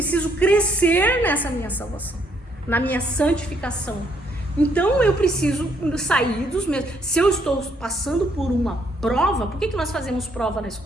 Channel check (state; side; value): normal; both; correlation 0.70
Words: crescer nessa minha salvação, na minha santificação. Então eu preciso sair dos meus... Se eu estou passando por uma prova, por que nós fazemos prova na